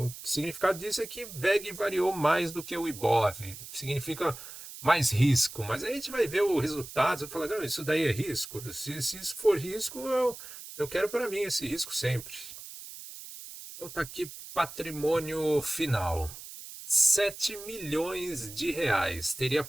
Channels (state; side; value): noise; right; hiss, 13 dB below the sound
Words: O significado disso é que VEG variou mais do que o IBOV. Significa mais risco. Mas aí a gente vai ver o resultado e falar, não, isso daí é risco. Se isso for risco, eu quero para mim esse risco sempre. Então tá aqui patrimônio final. 7 milhões de reais. Teria